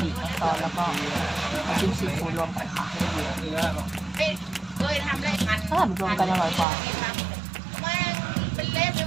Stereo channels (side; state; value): left; drops out; at 6.7 s